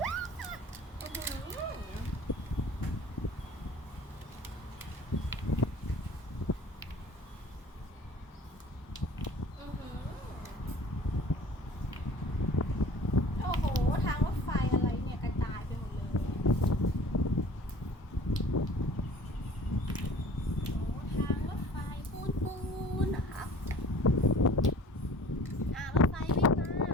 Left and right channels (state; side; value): normal; both; correlation 0.47